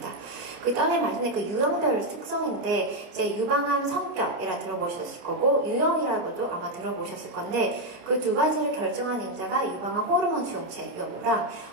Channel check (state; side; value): late; left; 29 ms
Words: 그 다음에 말씀드린 그 유형별 특성인데, 이제 유방암 성격이라 들어보셨을 거고, 유형이라고도 아마 들어보셨을 건데, 그 두 가지를 결정한 인자가 유방암 호르몬 수용체 여부랑